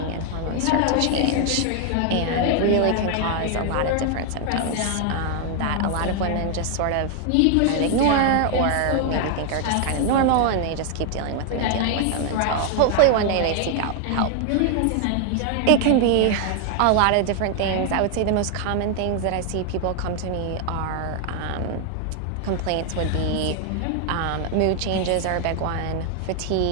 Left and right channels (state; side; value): different; both; correlation 0.00